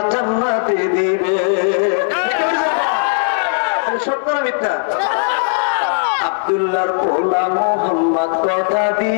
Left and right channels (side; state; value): right; silent; 67 dB below the other